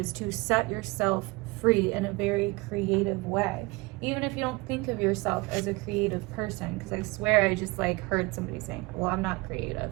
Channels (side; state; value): left; quieter; 24.3 dB